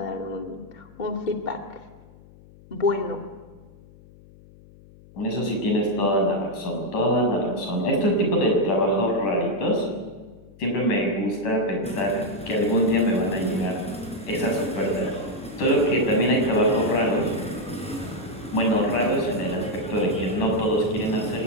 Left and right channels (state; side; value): noise; left; hum, 23 dB below the sound